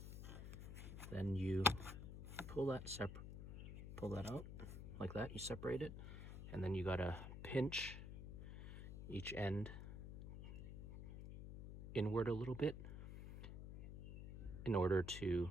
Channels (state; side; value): noise; left; hum, 8 dB below the sound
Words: Then you pull that out like that. You separate it, and then you gotta pinch each end inward a little bit in order to